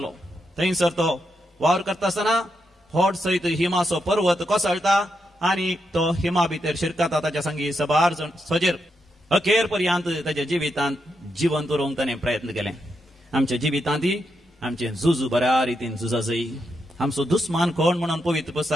थंयसर तो वावर करता आसतना व्हड सयत हिमाचो पर्वत कोसळटा आनी तो हिमा भितर शिरकता ताच्या संगी 12 जण सोजेर अखेर पर्यंत ताच्या जिवितांत जिवंत उरोवंक ताणें प्रयत्न केले आमच्या जिवितांत आमचे झूज बऱ्या रितीन झुजा जाय आमचो दुस्मान कोण म्हणून पवित्र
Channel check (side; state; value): both; normal; correlation 0.83